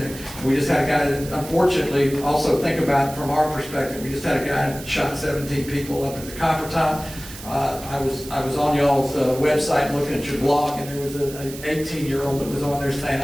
we just had a guy that, unfortunately, also think about it from our perspective. We just had a guy that shot 17 people up at the Copper Top. I was on y'all's website looking at your blog, and there was an 18-year-old that was on there saying,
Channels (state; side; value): noise; right; hiss, 14 dB below the sound